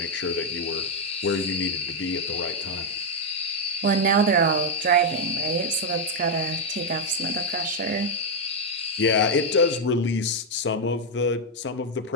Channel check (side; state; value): both; normal; correlation 0.01